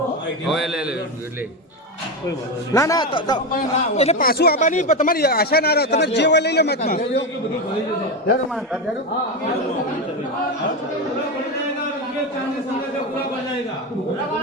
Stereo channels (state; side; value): normal; both; correlation 0.14